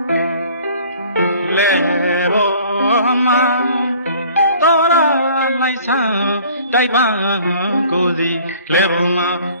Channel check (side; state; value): both; inverted; correlation -0.52